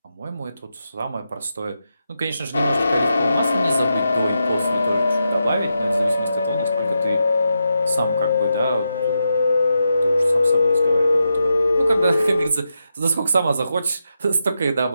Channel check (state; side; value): inverted; both; correlation -0.86